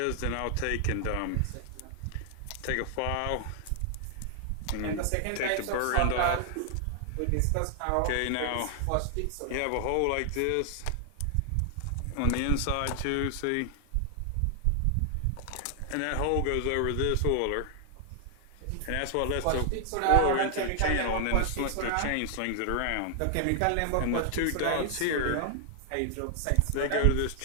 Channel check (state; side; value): different; both; correlation 0.00